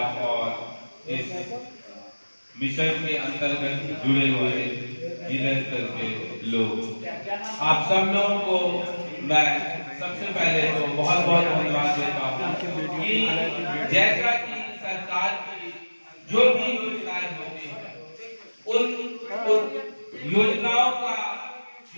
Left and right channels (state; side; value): inverted; both; correlation -1.00